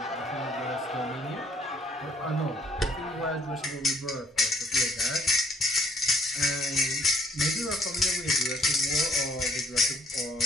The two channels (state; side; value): normal; both; correlation 0.65